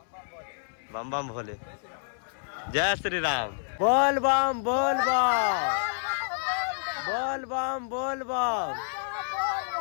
बम बम भोले जय श्री राम बोल बम बोल बम बोल बम बोल बम।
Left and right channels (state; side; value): silent; right; 59 dB below the other